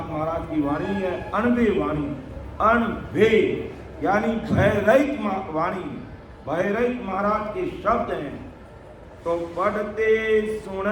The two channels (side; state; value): both; identical; correlation 1.00